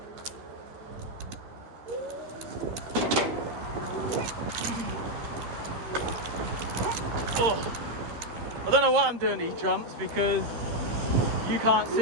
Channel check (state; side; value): late; left; 13 ms